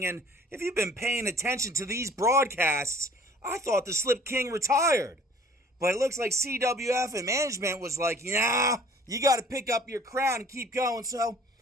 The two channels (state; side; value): normal; both; correlation 0.52